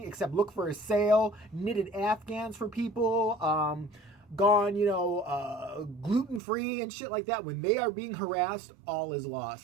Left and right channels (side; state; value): left; drops out; at 6.4 s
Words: except look for a sale, knitted Afghans for people, gone, gluten-free and shit like that. When they are being harassed, all is